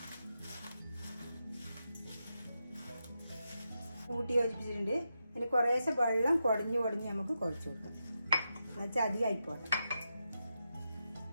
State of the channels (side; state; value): both; inverted; correlation -0.87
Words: കൂട്ടി യോജിപ്പിച്ചിട്ടുണ്ട്. ഇനി കുറേശ്ശെ വെള്ളം കുടഞ്ഞ് നമുക്ക് കുഴച്ച് കൊടുക്കാം. എന്നുവെച്ചാൽ അധികം ആയിപ്പോട്ടെ.